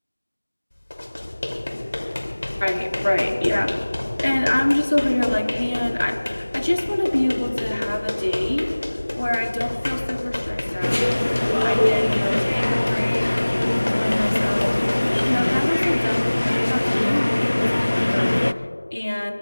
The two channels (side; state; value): both; inverted; correlation -1.00